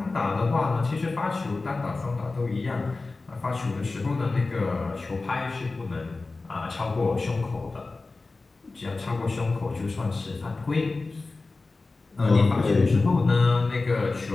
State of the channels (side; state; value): right; quieter; 3.6 dB